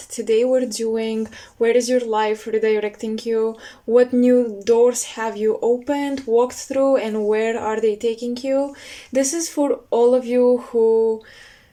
we're doing where is your life redirecting you, what new doors have you opened, walked through, and where are they taking you. This is for all of you who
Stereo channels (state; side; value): identical; both; correlation 1.00